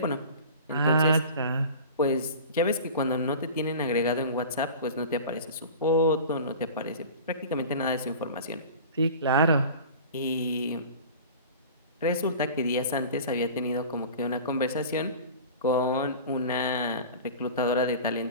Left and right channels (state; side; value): inverted; both; correlation -0.38